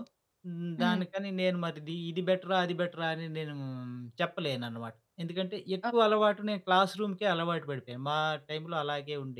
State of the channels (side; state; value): both; identical; correlation 1.00